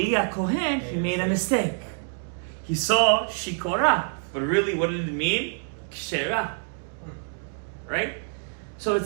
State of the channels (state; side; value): silent; left; 61 dB below the other